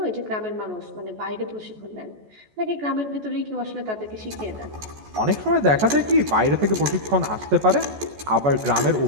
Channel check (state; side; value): late; left; 14 ms